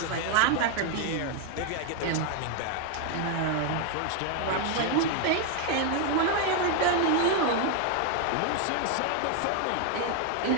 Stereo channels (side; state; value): both; different; correlation 0.00